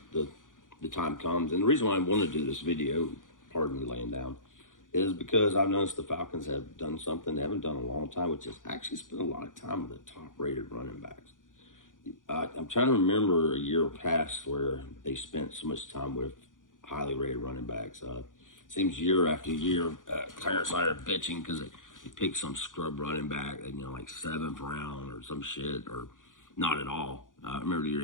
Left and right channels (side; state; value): right; late; 0.88 ms